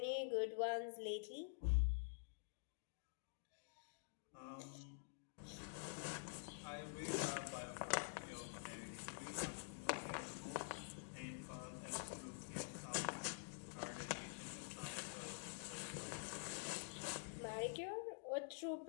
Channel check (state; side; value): silent; right; digital silence